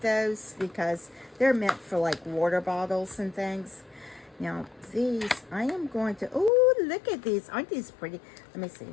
those because they're meant for like water bottles and things. Now these, I am going to, oh, look at these. Aren't these pretty? Let me see.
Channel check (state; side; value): drops out; right; at 6.5 s